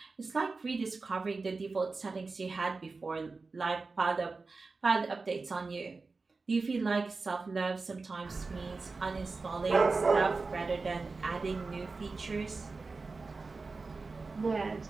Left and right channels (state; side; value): quieter; left; 4.0 dB